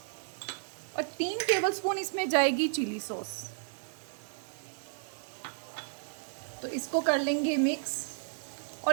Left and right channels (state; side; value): silent; left; 56 dB below the other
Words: और 3 टेबलस्पून इसमें जाएगी चिली सॉस। तो इसको कर लेंगे मिक्स